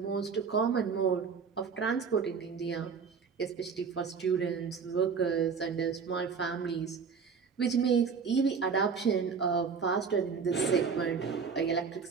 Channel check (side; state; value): left; quieter; 5.8 dB